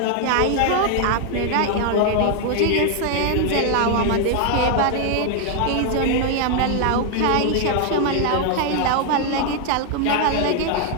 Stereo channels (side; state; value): both; different; correlation 0.00